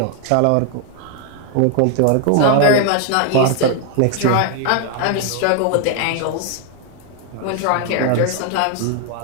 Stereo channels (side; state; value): both; different; correlation 0.00